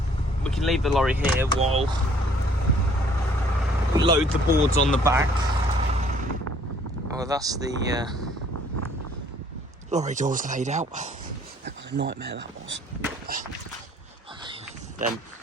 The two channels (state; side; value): normal; both; correlation 0.59